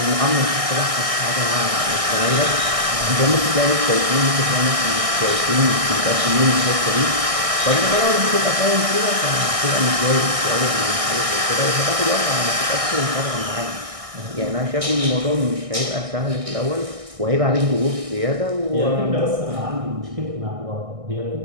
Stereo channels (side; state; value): left; late; 1.6 ms